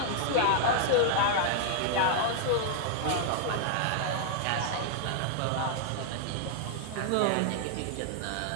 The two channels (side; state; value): both; different; correlation 0.00